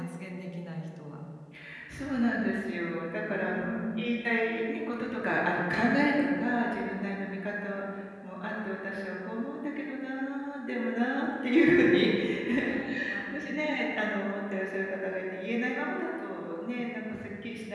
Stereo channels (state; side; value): identical; both; correlation 1.00